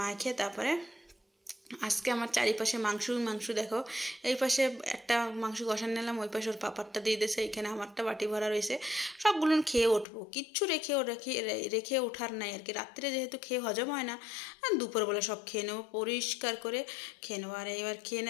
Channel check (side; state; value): right; drops out; at 10.1 s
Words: তারপরে আজকে আমার চারিপাশে মাংস দেখো। এই পাশে একটা মাংস কষান নিলাম, ওই পাশে ওর পাপারটা দিয়ে দিয়েছে, এখানে আমারটা বাটি ভরা রয়েছে। সবগুলো খেয়ে উঠবো, কিচ্ছু রেখে ওঠার নাই আর কি। রাত্রে যেহেতু খেয়ে হজম হয় না, দুপুরবেলা সব খেয়ে নেবো, পরিষ্কার করে খেয়ে নেবো। আর এবার খেয়ে